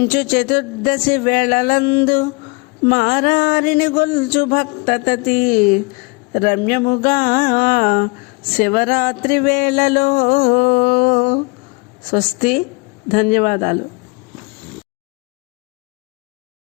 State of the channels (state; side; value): quieter; right; 28.2 dB